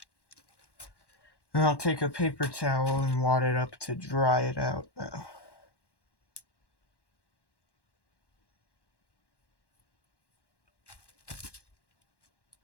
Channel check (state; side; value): late; right; 1.1 ms